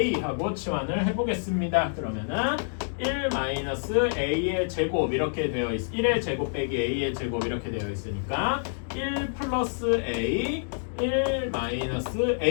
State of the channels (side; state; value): right; silent; digital silence